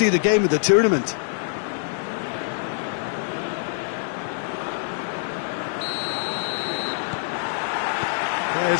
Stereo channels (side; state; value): right; silent; digital silence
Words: the game of the tournament.